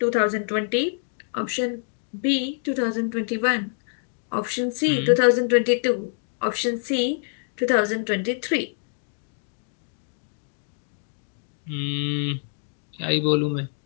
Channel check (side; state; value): right; silent; digital silence